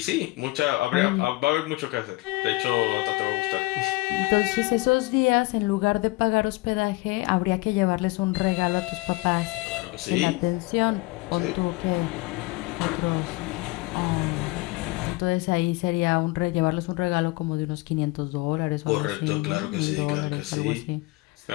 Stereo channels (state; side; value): quieter; right; 22.8 dB